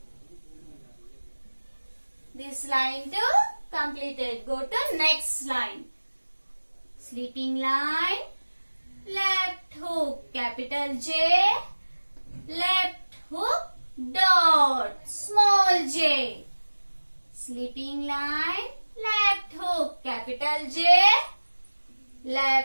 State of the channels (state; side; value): inverted; both; correlation -1.00